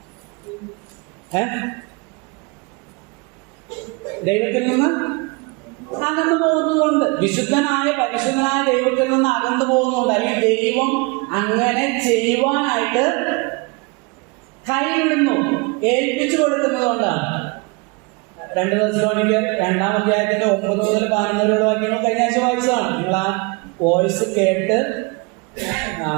ദൈവത്തിൽ നിന്ന് അകന്നു പോകുന്നതുകൊണ്ട്, പരിശുദ്ധനായ ദൈവത്തിൽ നിന്ന് അകന്നു പോകുന്നതുകൊണ്ട്, അല്ലെങ്കിൽ ദൈവം അങ്ങനെ ചെയ്യുവാനായിട്ട് കൈവിടുന്നു, ഏൽപ്പിച്ചു കൊടുക്കുന്നത് കൊണ്ടാണ്. 2 തെസ്സലോനിക്കർ 2-ാം അധ്യായത്തിന്റെ 9 മുതൽ 11 വരെയുള്ള വാക്യങ്ങൾ കഴിഞ്ഞ ആഴ്ച വായിച്ചതാണ്. നിങ്ങൾ ആ വോയിസ് കേട്ട്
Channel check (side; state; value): left; quieter; 28.9 dB